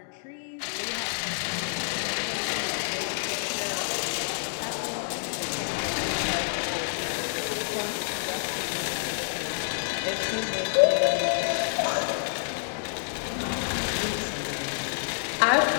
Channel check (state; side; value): silent; right; digital silence